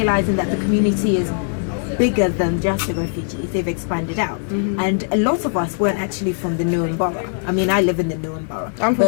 that the community is bigger than just the refugees, they've expanded out. And a lot of us weren't actually from the Newham Borough. I mean, I live in the Newham Borough, but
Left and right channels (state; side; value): silent; right; digital silence